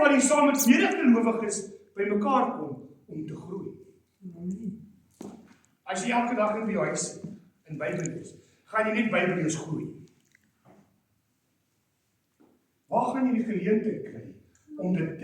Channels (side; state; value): both; identical; correlation 1.00